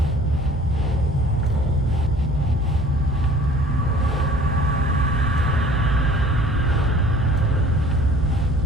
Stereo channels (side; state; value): both; normal; correlation 0.50